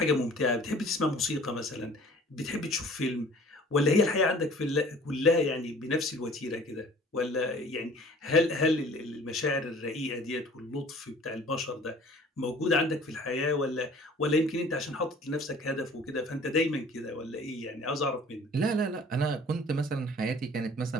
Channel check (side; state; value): both; normal; correlation 0.49